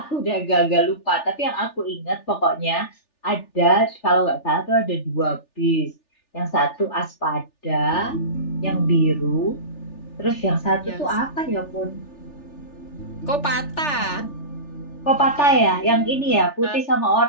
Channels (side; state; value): right; late; 3.4 ms